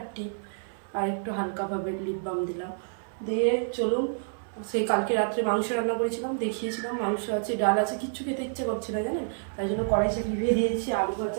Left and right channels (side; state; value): left; silent; 55 dB below the other